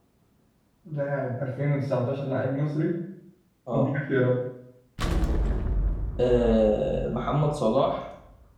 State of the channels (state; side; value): identical; both; correlation 1.00